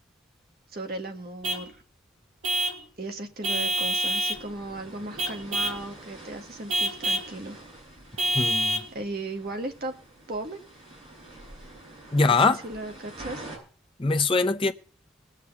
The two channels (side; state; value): both; normal; correlation 0.56